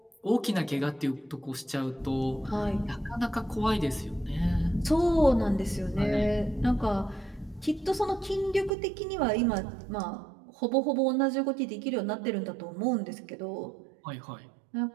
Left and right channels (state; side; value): drops out; left; at 8.7 s